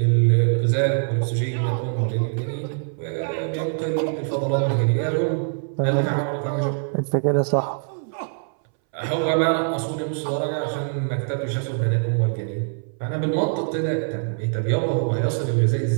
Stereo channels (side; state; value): left; silent; 63 dB below the other